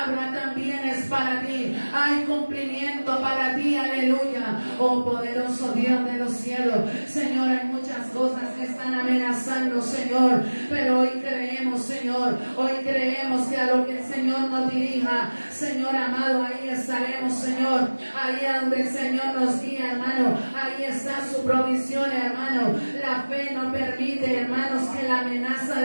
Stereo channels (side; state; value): both; inverted; correlation -1.00